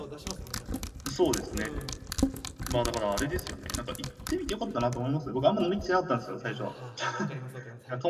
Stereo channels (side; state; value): both; identical; correlation 1.00